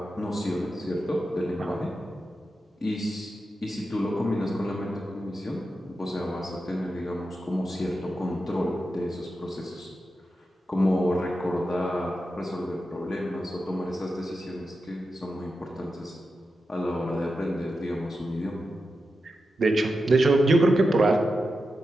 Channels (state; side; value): normal; both; correlation 0.90